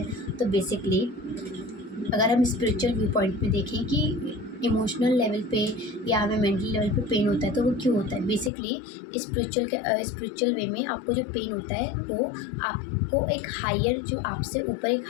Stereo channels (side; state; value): right; drops out; at 8.5 s